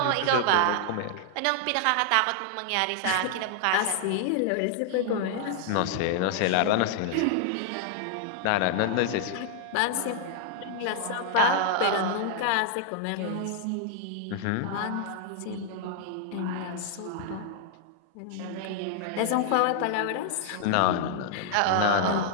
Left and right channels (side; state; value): both; different; correlation 0.00